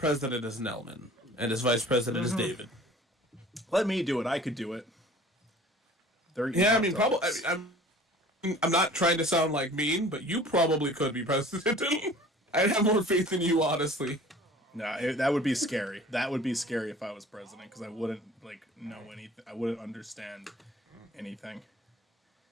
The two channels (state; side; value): normal; both; correlation 0.47